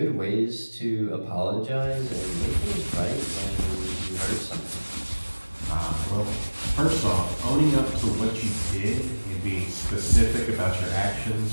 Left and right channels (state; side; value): inverted; both; correlation -1.00